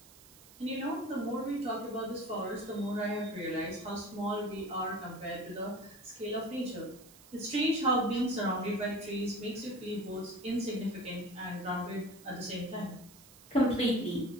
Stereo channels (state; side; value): noise; right; hiss, 21 dB below the sound